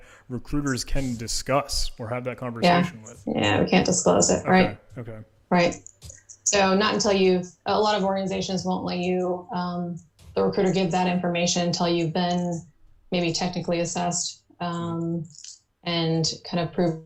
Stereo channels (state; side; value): identical; both; correlation 1.00